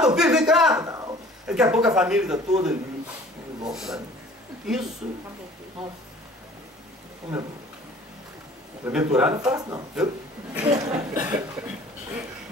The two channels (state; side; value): normal; both; correlation 0.49